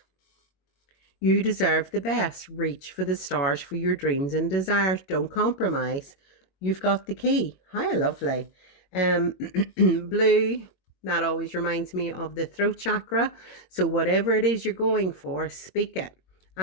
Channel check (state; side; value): late; right; 21 ms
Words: You deserve the best. Reach for the stars for your dreams and desires. Don't compromise. You've got the key. How lovely. Blue, that always reminds me of the throat chakra. So whatever it is you're going for, speak it.